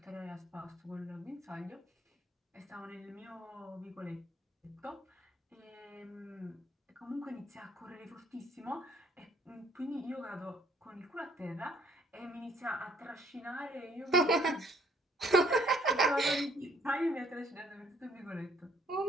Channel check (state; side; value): normal; both; correlation 0.63